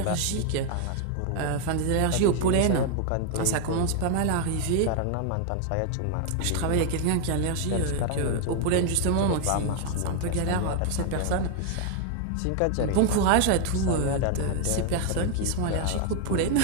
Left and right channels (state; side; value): different; both; correlation 0.00